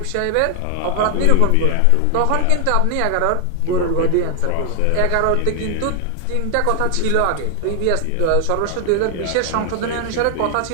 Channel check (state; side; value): different; both; correlation 0.00